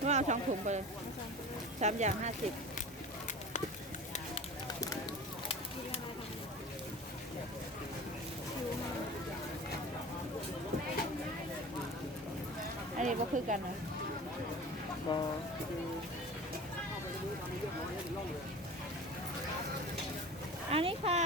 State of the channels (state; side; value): normal; both; correlation 0.36